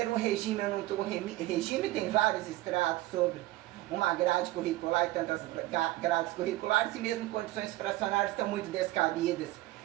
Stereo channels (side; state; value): left; quieter; 17.9 dB